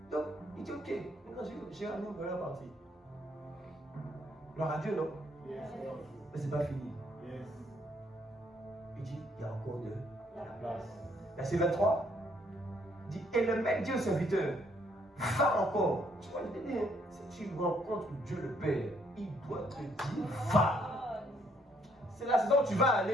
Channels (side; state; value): both; normal; correlation 0.68